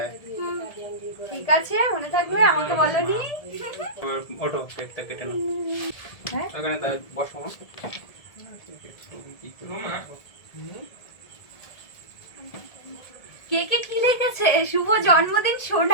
ঠিক আছে মনে থাকবে, আমাকে বলনি। ওঠো, কেকটা কেটে নাও। হ্যাঁ ওখানে তা বসো। কেকে কি লিখেছে? শুভ জন্মদিন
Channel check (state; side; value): late; right; 1.7 ms